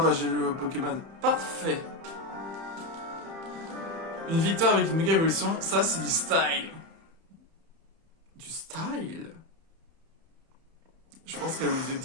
j'ai le Pokémon. Parfait. Une victoire avec une méga évolution, ça c'est du style. Du style? Je pense qu'elle voulait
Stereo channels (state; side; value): late; left; 31 ms